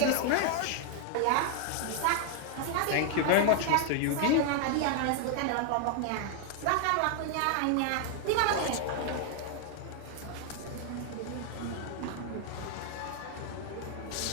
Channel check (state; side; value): different; both; correlation 0.00